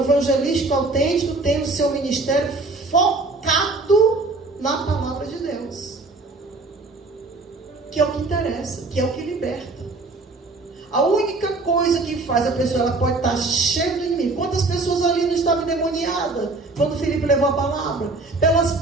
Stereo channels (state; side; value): quieter; left; 3.4 dB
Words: autêntico tem o seu ministério focado na palavra de Deus. Que é o que interessa, que é o que liberta. A única coisa que faz a pessoa, ela pode estar cheia do inimigo. Quantas pessoas ali não estavam endemoniadas quando Filipe levou a palavra? Pelas